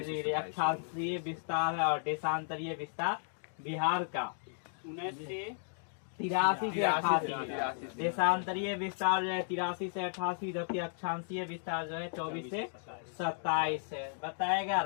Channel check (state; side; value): silent; right; digital silence